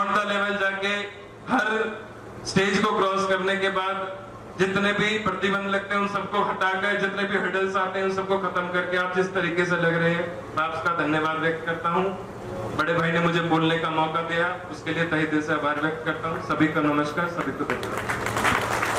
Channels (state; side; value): identical; both; correlation 1.00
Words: द लेवल जाके हर स्टेज को क्रॉस करने के बाद जितने भी प्रतिबंध लगते हैं उन सबको हटाकर, जितने भी हर्डल्स आते हैं उन सबको खत्म करके आप जिस तरीके से लग रहे हैं, मैं आपका धन्यवाद व्यक्त करता हूं। बड़े भाई ने मुझे बोलने का मौका दिया, उसके लिए तहे दिल से आभार व्यक्त करता हूं। सभी को नमस्कार, सभी को धन्यवाद।